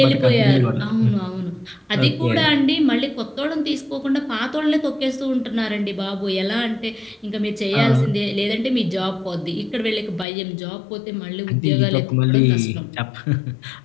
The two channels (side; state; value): right; drops out; at 10.2 s